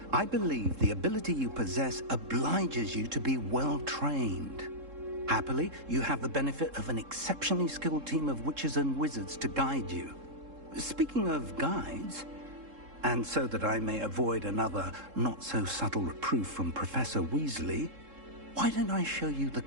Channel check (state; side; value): late; left; 3.7 ms